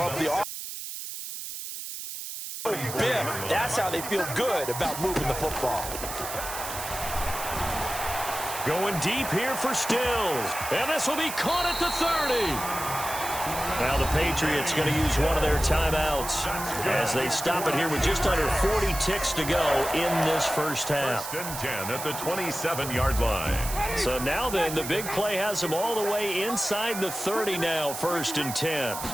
the Biff. That's how they feel good about moving the football. Going deep here for Stills. And this will be caught at the 30. Now the Patriots going to use one of their timeouts as they stop it here with just under 40 ticks to go in this first half. 1st and 10 at the 27-yard line. So now then, the big play has them all the way inside the 30 now, 1st and 10.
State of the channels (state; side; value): noise; right; hiss, 8 dB below the sound